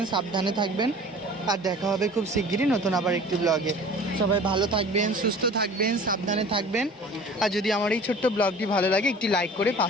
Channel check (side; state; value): both; normal; correlation 0.44